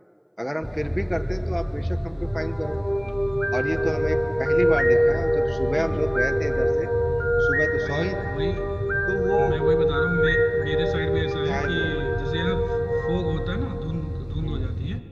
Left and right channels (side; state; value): both; identical; correlation 1.00